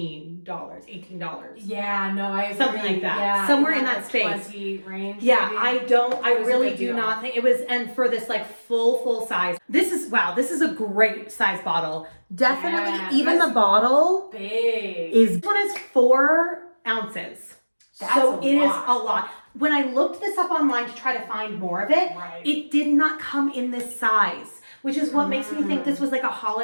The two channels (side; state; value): both; inverted; correlation -1.00